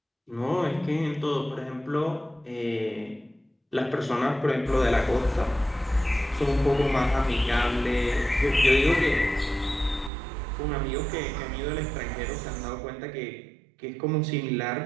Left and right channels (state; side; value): drops out; left; at 10.1 s